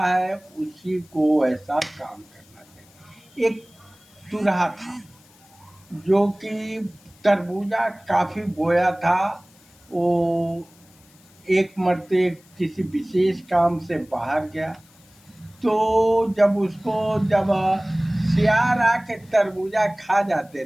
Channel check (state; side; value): noise; left; hiss, 29 dB below the sound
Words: उसी को ऐसा काम करना चाहिए। एक चूल्हा था जो कि तरबूजा काफी बोया था। वो एक मर्ते किसी विशेष काम से बाहर गया, तो जब सियार आके तरबूजा खा जाते